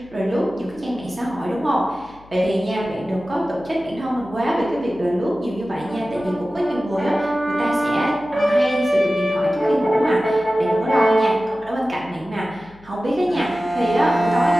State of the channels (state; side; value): noise; left; hum, 25 dB below the sound